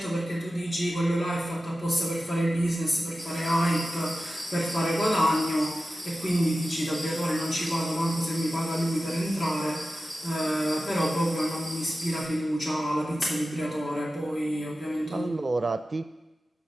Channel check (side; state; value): both; normal; correlation 0.94